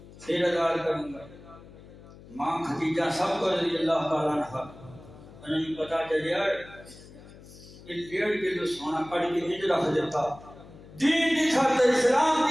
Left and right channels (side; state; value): left; noise; hum, 20 dB below the sound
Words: پھر آزاد کروں گا۔ ماں خدیجہ سب کو رضی اللہ تعالیٰ عنہ انہوں نے پتا چلیا کہ 1.5 کلو سونا کٹ کے ہج رکھ دیتا، دین کی خاطر، اسلام